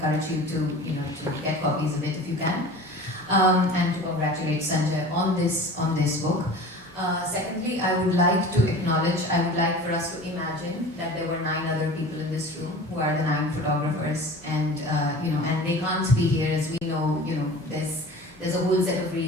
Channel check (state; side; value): normal; both; correlation 0.39